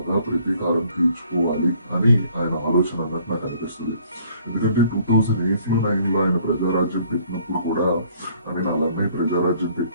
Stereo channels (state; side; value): inverted; both; correlation -0.59